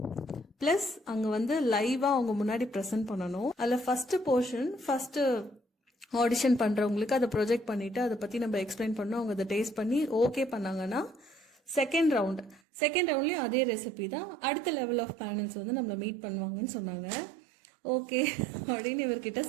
பிளஸ் அங்க வந்து லைவா அவங்க முன்னாடி பிரசன்ட் பண்ணணும். அதுல ஃபர்ஸ்ட் போர்ஷன் ஃபர்ஸ்ட் ஆடிஷன் பண்றவங்களுக்கு அதை ப்ரொஜெக்ட் பண்ணிட்டு அதை பத்தி நம்ம எக்ஸ்பிளைன் பண்ணோம். அவங்க அதை டேஸ்ட் பண்ணி ஓகே பண்ணாங்கன்னா செகண்ட் ரவுண்ட்லயும் அதே ரெசிபி தான். அடுத்த லெவல் ஆஃப் பேனல்ஸ் வந்து நம்மள மீட் பண்ணுவாங்கன்னு சொன்னாங்க. ஓகே அப்படின்னு இவர்கிட்ட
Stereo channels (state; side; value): drops out; left; at 12.6 s